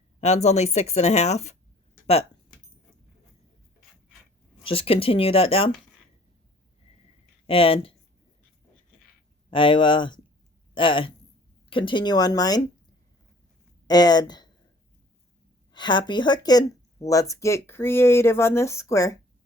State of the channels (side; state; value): both; normal; correlation 0.54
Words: That's only 6.5, but just continue that down, and I will continue on mine. And happy hooking. Let's get creative on this square.